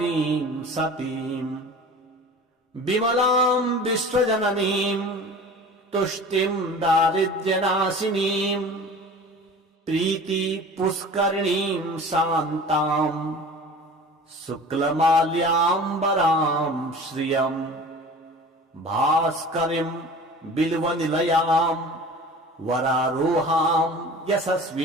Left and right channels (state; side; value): normal; both; correlation 0.40